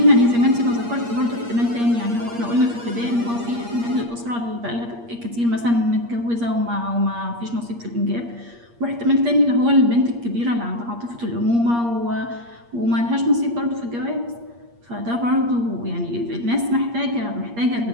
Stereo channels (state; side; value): late; left; 8.5 ms